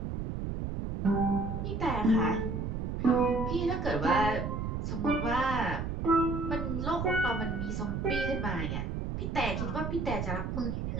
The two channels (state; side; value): noise; right; rumble, 3 dB below the sound